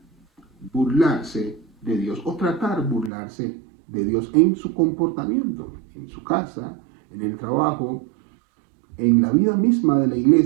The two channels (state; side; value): drops out; left; at 3.1 s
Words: burlarse de Dios o tratar burlarse de Dios en su comportamiento, en su casa, en el trabajo, en la vida misma de la